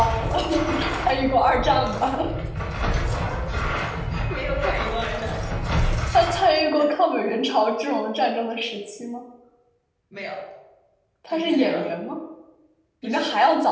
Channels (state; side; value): identical; both; correlation 1.00